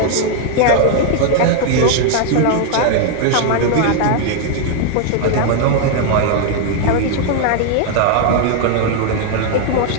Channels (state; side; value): different; both; correlation 0.00